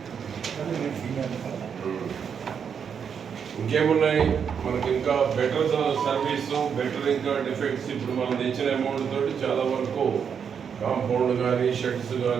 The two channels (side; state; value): left; quieter; 7.2 dB